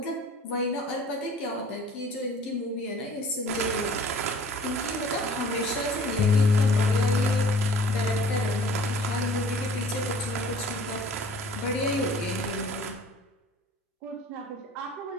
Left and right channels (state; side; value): normal; both; correlation 0.50